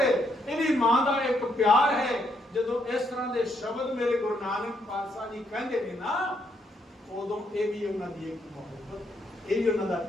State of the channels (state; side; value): normal; both; correlation 0.74